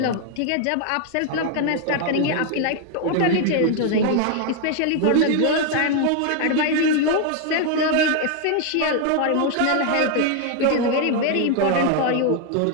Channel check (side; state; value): both; different; correlation 0.01